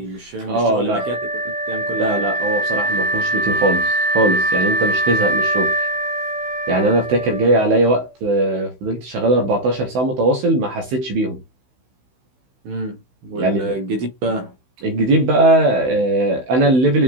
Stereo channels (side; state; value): left; late; 16 ms